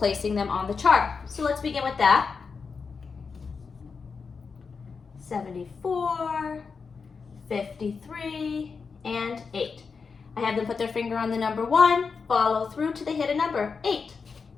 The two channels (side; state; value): right; quieter; 5.2 dB